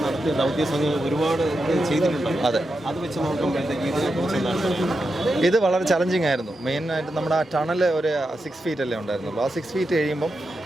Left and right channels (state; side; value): normal; both; correlation 0.88